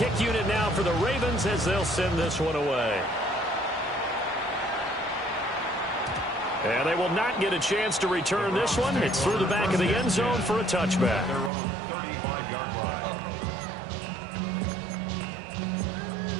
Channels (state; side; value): drops out; left; at 11.5 s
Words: unit now for the Ravens as they'll send this one away. And they will not get a chance to return this one. It's through the back of the end zone for a touchback. Their own 35-yard line.